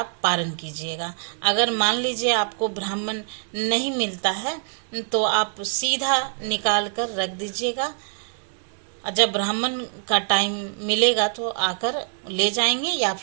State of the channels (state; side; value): silent; left; digital silence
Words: पारण कीजिएगा। अगर मान लीजिए आपको ब्राह्मण नहीं मिलता है तो आप सीधा निकाल कर रख दीजिएगा। जब ब्राह्मण का टाइम मिलेगा तो आकर ले जाएंगे या